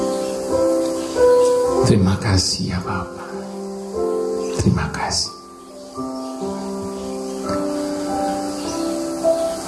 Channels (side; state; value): both; identical; correlation 1.00